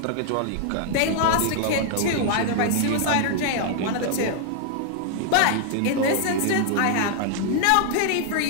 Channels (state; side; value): different; both; correlation 0.00